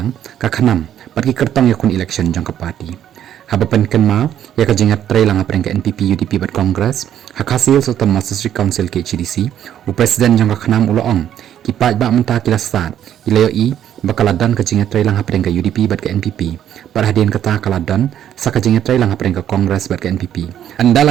ka khanam patki kertong yakun election jang ka party habapan kenma ya ka jinga tre lang apreng ka NPP UDP bat Congress hakasil sultan District Council ke CDC u president jang ka khanam uloong ki pat ba menta kilasat ilayo i bakaladan ka jinga tre lang apreng ka UDP bat ka NPP parhadin kata kaladan sa ka jinga tre lang apreng ka Congress bat ka NPP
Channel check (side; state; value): left; quieter; 10.5 dB